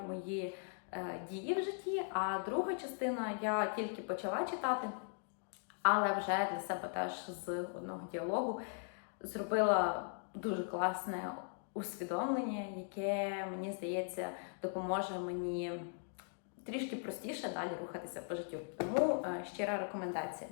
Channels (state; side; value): silent; right; 52 dB below the other